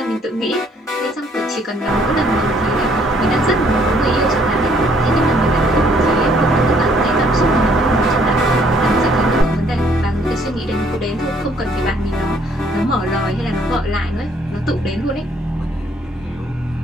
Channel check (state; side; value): normal; both; correlation 0.64